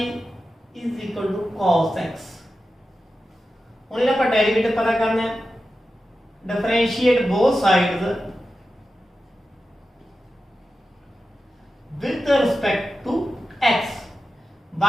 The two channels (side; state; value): both; normal; correlation 0.92